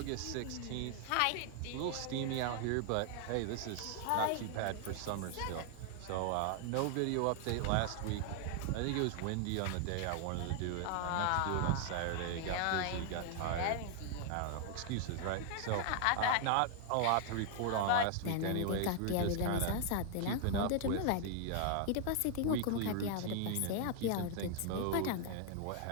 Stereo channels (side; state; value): both; different; correlation 0.00